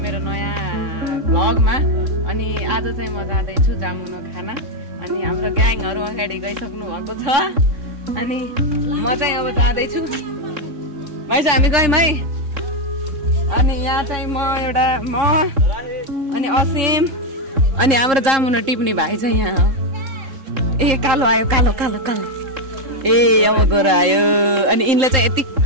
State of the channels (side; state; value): left; late; 3.7 ms